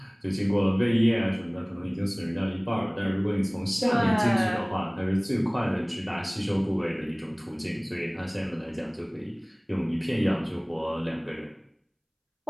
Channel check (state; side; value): identical; both; correlation 1.00